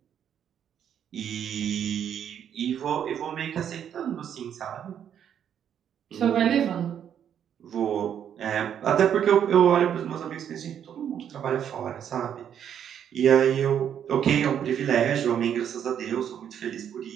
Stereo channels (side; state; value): left; quieter; 9.1 dB